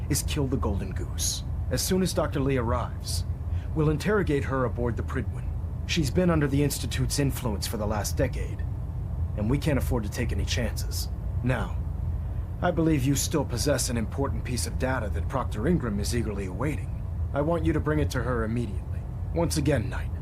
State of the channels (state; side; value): identical; both; correlation 1.00